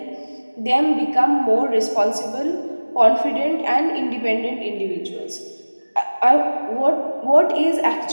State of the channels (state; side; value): inverted; both; correlation -1.00